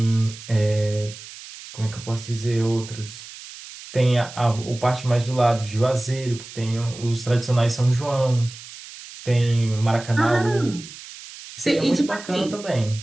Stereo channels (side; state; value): right; noise; hiss, 15 dB below the sound